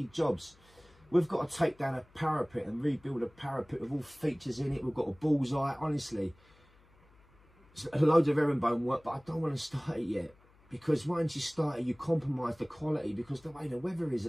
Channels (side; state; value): left; noise; hum, 29 dB below the sound